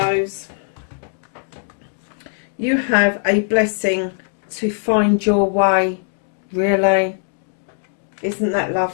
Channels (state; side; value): silent; right; digital silence